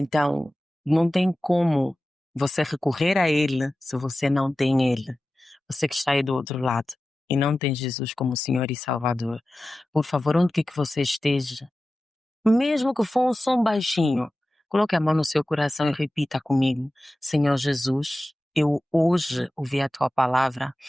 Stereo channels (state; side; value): normal; both; correlation 0.95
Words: não tem como você recorrer a Ele se você não tem Ele. Você que está aí do outro lado e não tem Jesus como Senhor e Salvador, por favor, onde quer que você esteja, mesmo que for um som baixinho, coloque a mão no seu coração e repita comigo: Senhor Jesus, eu hoje ouvi a tua palavra